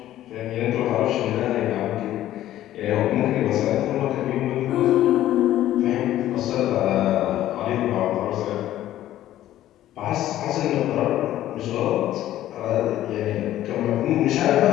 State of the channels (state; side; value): quieter; right; 13.3 dB